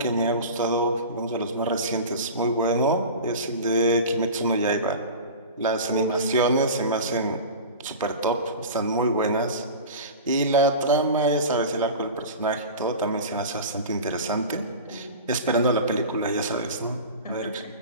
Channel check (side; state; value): both; inverted; correlation -0.33